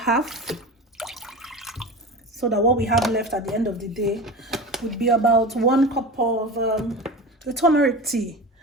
so that what we have left at the end of the day would be about 1 cup of the turmeric tea.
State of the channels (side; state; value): both; normal; correlation 0.30